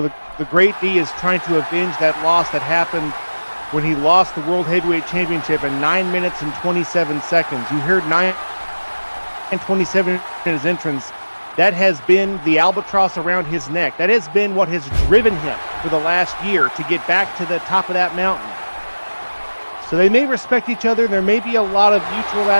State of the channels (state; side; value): inverted; both; correlation -1.00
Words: the Great D is trying to avenge that loss that happened when he lost the World Heavyweight Championship in 9 minutes and 27 seconds. You heard 9:27 in his entrance. That has been the albatross around his neck. That has been what has driven him for the last year to get back to the top of that mountain. So they may respect each other. There may be a lot of mutual